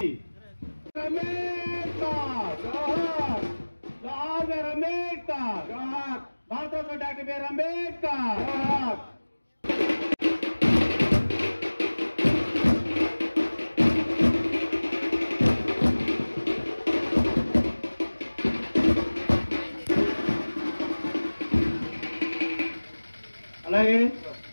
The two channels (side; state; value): both; inverted; correlation -1.00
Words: భారతరత్న డాక్టర్ బిఆర్ అంబేద్కర్. అలాగే